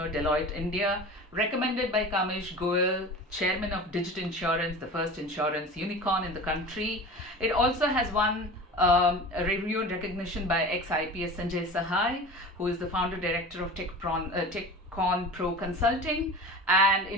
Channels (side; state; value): both; normal; correlation 0.34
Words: Deloitte India, recommended by Kamesh Goel, chairman of Digit Insurance, the first insurance unicorn in the country. It also has won a review and recognition by ex-IPS Sanjay Sahai, who is the founder director of TechCon Pro Consulting, and